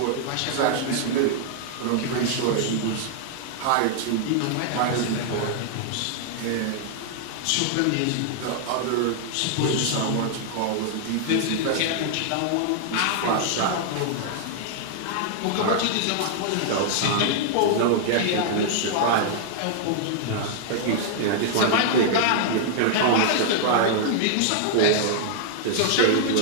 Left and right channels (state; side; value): different; both; correlation -0.01